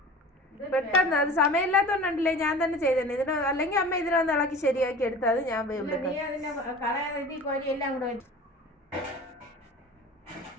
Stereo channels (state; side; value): normal; both; correlation 0.39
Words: പെട്ടെന്ന് അത് സമയമില്ലാത്തോണ്ടല്ലേ ഞാൻ തന്നെ ചെയ്തേ. ഇതിന് അല്ലെങ്കിൽ അമ്മ ഇതിനൊന്ന് ഇളക്കി ശരിയാക്കി എടുത്താൽ അത് ഞാൻ എല്ലാം കൂടെ